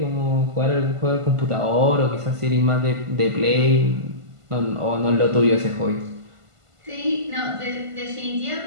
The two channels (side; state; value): left; late; 1.5 ms